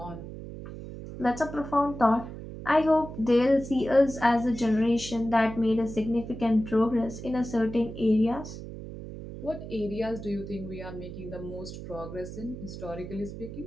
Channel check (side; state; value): right; noise; hum, 11 dB below the sound